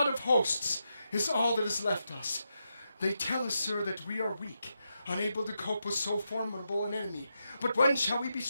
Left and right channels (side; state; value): both; inverted; correlation -0.85